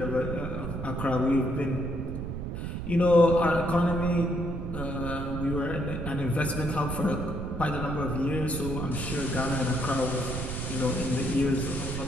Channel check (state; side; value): noise; right; rumble, 5 dB below the sound